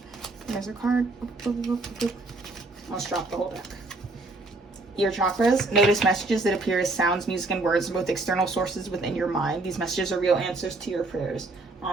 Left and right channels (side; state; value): left; quieter; 3.1 dB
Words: There's a card. Let's drop the whole deck. Ear chakras. Notice messages that appear as sounds, music, and words from both external sources within your mind. These messages are real answers to your prayers.